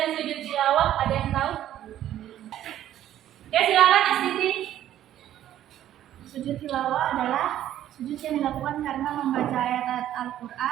sujud tilawah? Ada yang tahu? Oke, silakan Astiti. Sujud tilawah adalah sujud yang dilakukan karena membaca ayat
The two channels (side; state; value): left; quieter; 12.0 dB